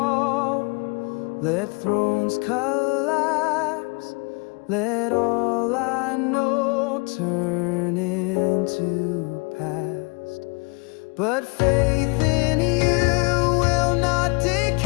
let thrones collapse, let all I know turn into past. But faith in you will not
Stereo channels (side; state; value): right; quieter; 31.3 dB